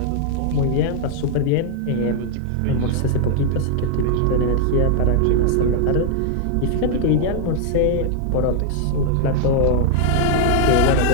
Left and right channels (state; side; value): different; both; correlation -0.01